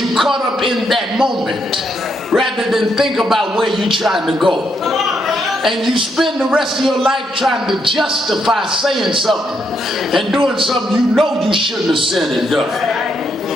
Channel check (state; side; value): normal; both; correlation 0.77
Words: caught up in that moment rather than think about where you're trying to go. And you spend the rest of your life trying to justify saying something and doing something you know you shouldn't have said and done.